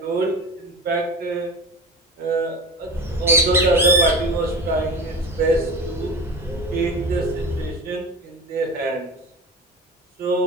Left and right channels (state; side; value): normal; both; correlation 0.30